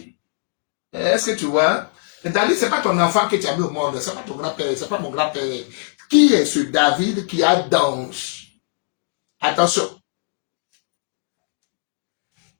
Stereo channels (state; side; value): silent; right; digital silence